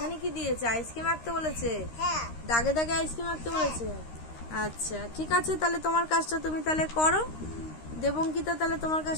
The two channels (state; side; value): late; right; 13 ms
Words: কি দিয়েছে? আইসক্রিম আঁকতে বলেছে। হ্যাঁ। দাগে দাগে আইসক্রিম আঁকতে বলেছে। আচ্ছা ঠিক আছে, তাহলে তোমার কাজটা তুমি তাহলে করো। দেবঙ্কিতা, তাহলে তোমার